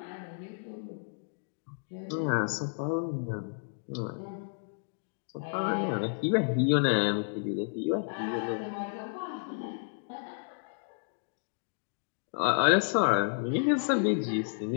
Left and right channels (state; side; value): silent; right; digital silence